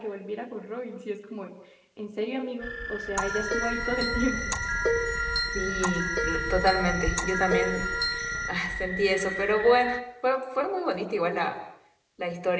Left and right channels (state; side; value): identical; both; correlation 1.00